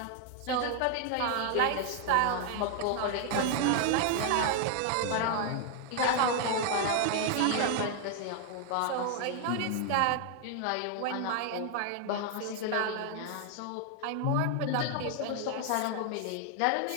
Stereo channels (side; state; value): both; different; correlation 0.00